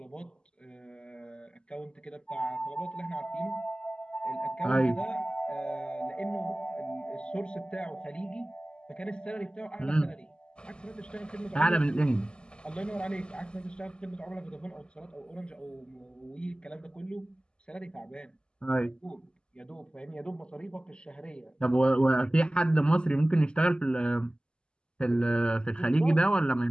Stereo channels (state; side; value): late; right; 0.049 ms